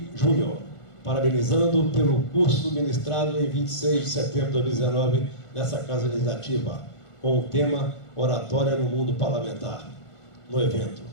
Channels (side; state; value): right; late; 1.5 ms